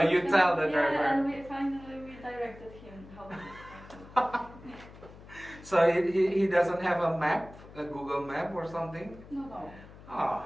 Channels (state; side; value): noise; left; hum, 19 dB below the sound